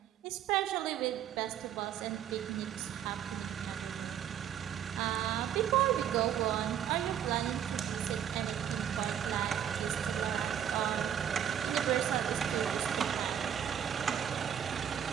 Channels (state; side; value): quieter; left; 9.5 dB